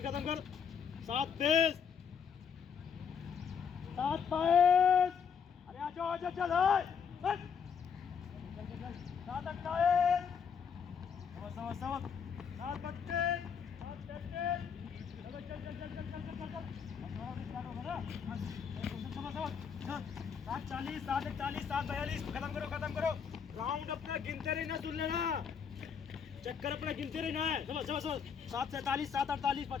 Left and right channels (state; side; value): quieter; right; 6.9 dB